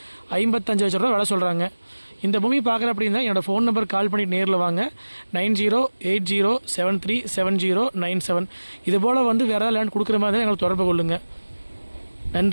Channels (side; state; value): both; inverted; correlation -1.00